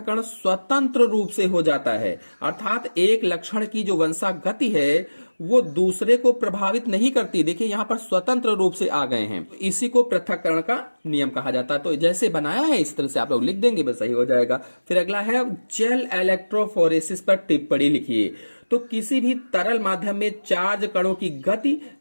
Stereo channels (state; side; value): inverted; both; correlation -1.00